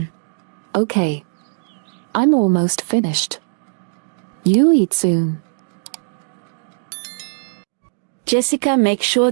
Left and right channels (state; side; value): silent; left; digital silence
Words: Okay. I'm almost finished. You eat soon. Jessica, make sure